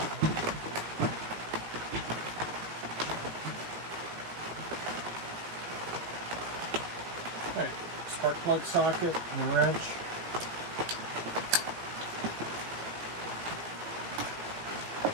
Okay, spark plug socket and wrench.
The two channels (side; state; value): left; late; 18 ms